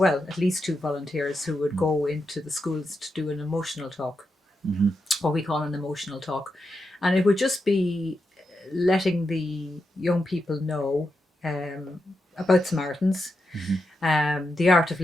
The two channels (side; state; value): both; normal; correlation 0.86